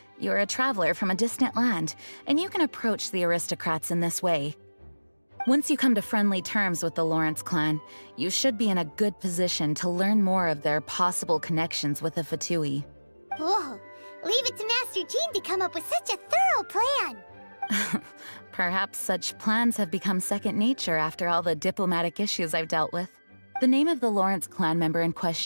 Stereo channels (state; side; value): inverted; both; correlation -1.00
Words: You're a traveler from a distant land, and you can approach the aristocrats in this way. Once you come to friendly terms with the Lawrence clan, you should be in a good position to learn more of their possible connections with the Fatui. Whoa, leave it to Master Jean to come up with such a thorough plan! Perhaps such plans have become second nature after all the diplomatic issues I've dealt with. The name of the Lawrence clan member in